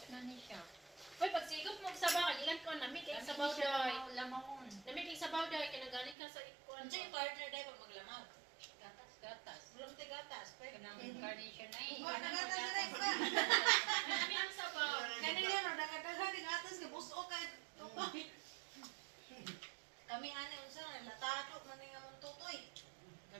na ni siya. Uy, pag sigop mo sa bakal, ilan ko, namig kay sabaw doy. Lamawon. Namig kay sabaw doy, kinagaling ka sa ikuan. Ano yung partner dahil pag maglamaw? Gatas. Wala mo tayo gatas. Kanang incarnation na eh. Wala na gatas na rin ba? Namig ang sabaw. Ganun yan, o, nakataga din gatas ka, buso ka. Kami ani unsa na latado man nga mong tutoy.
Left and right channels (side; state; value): left; drops out; at 6.2 s